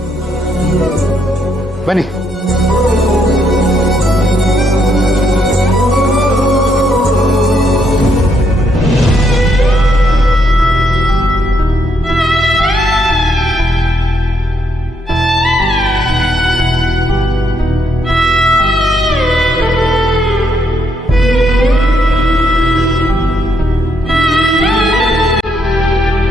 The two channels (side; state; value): both; normal; correlation 0.75